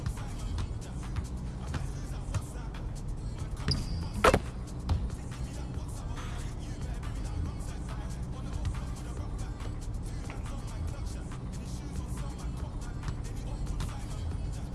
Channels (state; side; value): identical; both; correlation 1.00